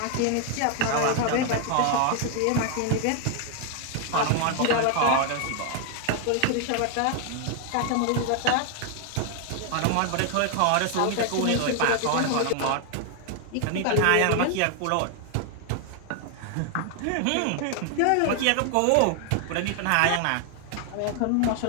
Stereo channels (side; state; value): both; different; correlation 0.00